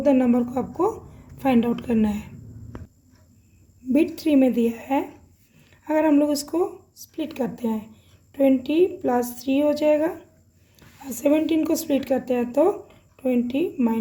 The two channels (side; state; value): both; identical; correlation 1.00